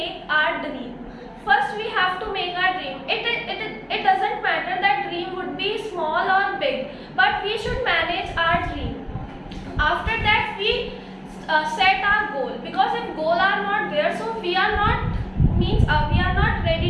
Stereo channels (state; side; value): identical; both; correlation 1.00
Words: our dream. First we have to make our dream. It doesn't matter that dream would be small or big, but we should manage our dream. After that we set our goal, because if goal are not there, so we are not